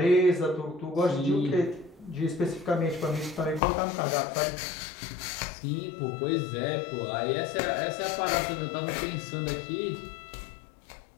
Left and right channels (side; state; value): right; drops out; at 3.6 s